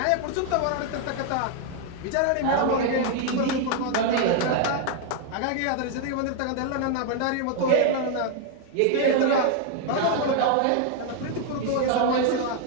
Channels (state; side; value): different; both; correlation 0.00